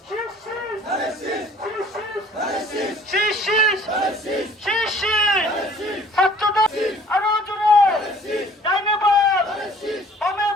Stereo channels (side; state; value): both; normal; correlation 0.53